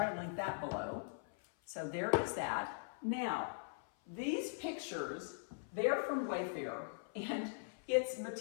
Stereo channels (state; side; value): silent; right; 50 dB below the other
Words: to link that below. So there is that. Now, these pictures, they're from Wayfair, and it's